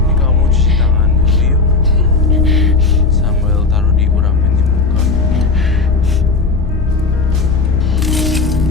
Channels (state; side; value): quieter; right; 4.1 dB